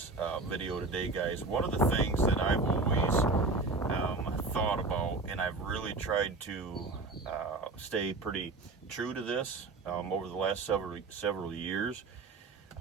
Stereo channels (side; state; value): left; quieter; 3.5 dB